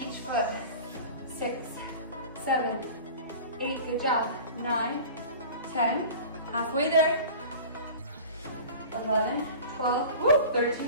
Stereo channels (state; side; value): inverted; both; correlation -0.39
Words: each foot. 6, 7, 8, good job. 9, 10, halfway there. 11, 12, woo,